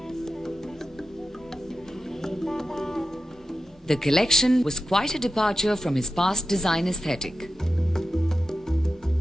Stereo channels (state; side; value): normal; both; correlation 0.92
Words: The collection was quite a departure from his past design aesthetic.